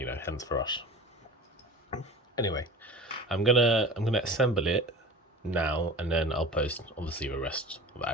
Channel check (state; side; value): normal; both; correlation 0.38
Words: hence the rush. Anyway, I'm gonna assemble it now, and then I'll post obviously the rest of the